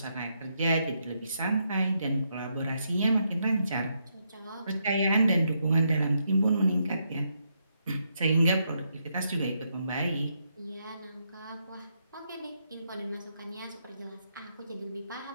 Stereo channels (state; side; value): inverted; both; correlation -0.79